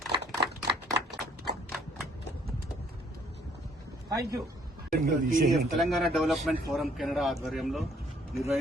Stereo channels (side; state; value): both; normal; correlation 0.63